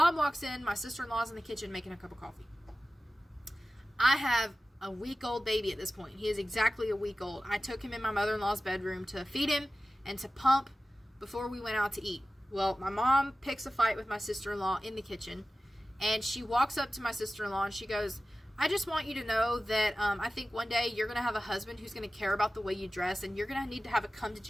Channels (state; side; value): normal; both; correlation 0.96